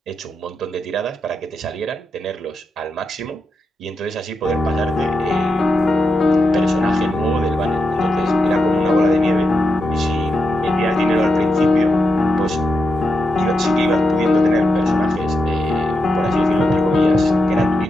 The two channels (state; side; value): normal; both; correlation 0.86